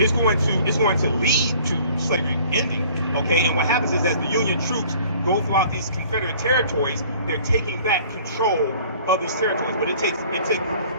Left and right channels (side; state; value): both; inverted; correlation -0.52